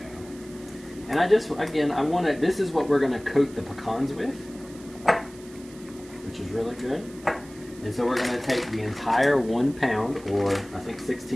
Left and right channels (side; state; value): right; noise; hiss, 22 dB below the sound